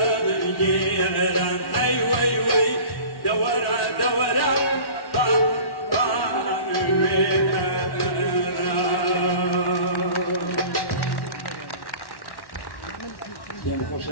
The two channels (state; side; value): late; right; 1.1 ms